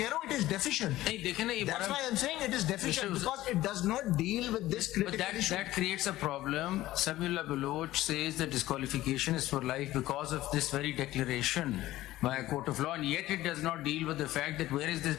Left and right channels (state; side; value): quieter; right; 15.9 dB